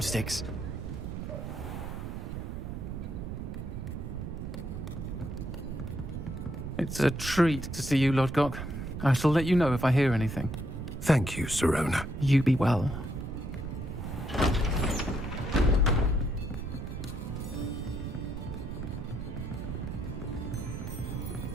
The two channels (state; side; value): noise; right; rumble, 6 dB below the sound